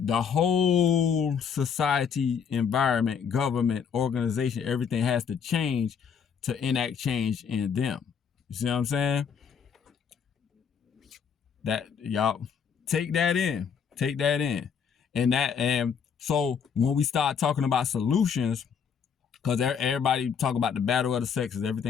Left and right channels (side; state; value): right; quieter; 6.9 dB